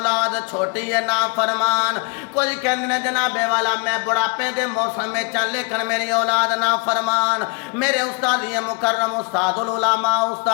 छोटी है ना फरमान। कुछ कहते ने जनाबे वाला मैं बुढ़ापे दे मौसम में चल, लेकिन मेरी औलाद ना फरमान। मेरे उस्ताद ये मुकर्रम उस्तादुल उलमा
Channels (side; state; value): right; quieter; 34.4 dB